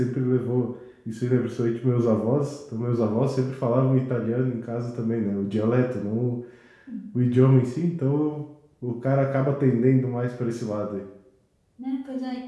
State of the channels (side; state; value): both; identical; correlation 1.00